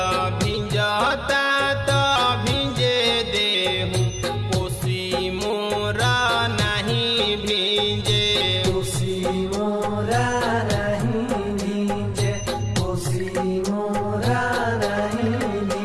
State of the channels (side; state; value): both; identical; correlation 1.00